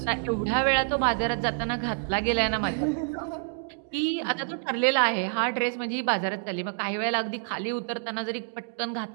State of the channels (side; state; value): left; silent; digital silence